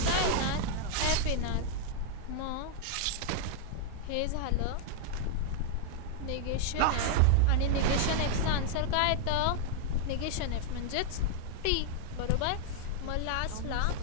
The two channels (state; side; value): different; both; correlation 0.00